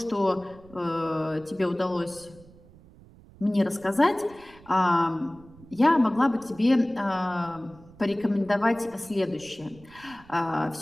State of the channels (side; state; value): right; noise; rumble, 23 dB below the sound